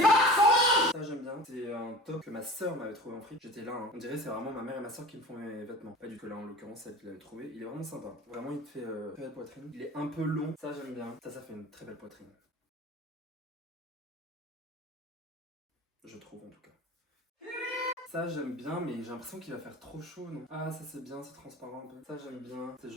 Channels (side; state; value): both; normal; correlation 0.37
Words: son linge! Ça j'aime bien. C'est un top que ma soeur m'avait trouvé en fric. J'étais là, hein. On dirait c'est vraiment ma mère et ma soeur qui me font mes vêtements. Pas du tout là en l'occurrence, celle qui l'avait trouvé. Il est vraiment sympa. Vraiment il te fait très belle poitrine. Il est un peu long. Ça j'aime bien. Ça fait une très belle poitrine. Je trouve en tout cas. Ça j'aime bien, mais j'ai l'impression qu'il va faire trop chaud, non? Ah, ça c'est bien, c'est transparent un peu. Ça j'aime bien. C'est